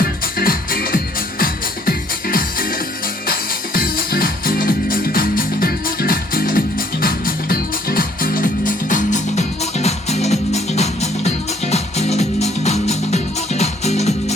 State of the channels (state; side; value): normal; both; correlation 0.63